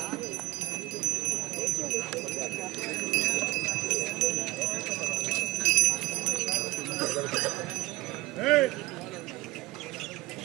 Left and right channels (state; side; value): quieter; left; 19.0 dB